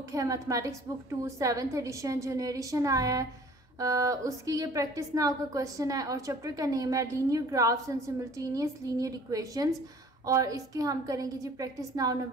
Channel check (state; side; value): normal; both; correlation 0.50